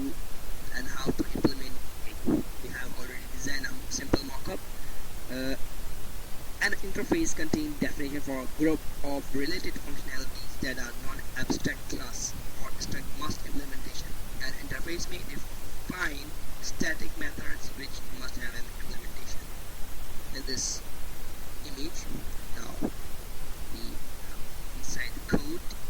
and how to implement it. We have already designed a simple mockup. Uh, an interface contains definition for a group of related functionalities that are non-abstract class or strict must implementation. An interface may define static methods which must have an implementation. In this image, now we have inside the code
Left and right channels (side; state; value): both; identical; correlation 1.00